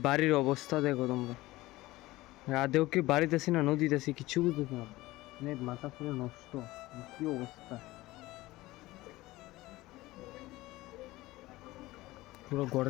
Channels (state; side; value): quieter; right; 18.6 dB